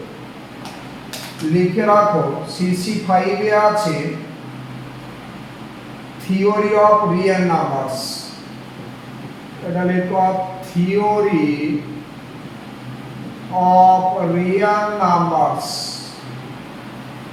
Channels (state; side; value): identical; both; correlation 1.00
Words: লিখে রাখো। CC5 এ আছে থিওরি অফ রিয়েল নাম্বারস। এটা লিখো থিওরি অফ রিয়েল নাম্বারস।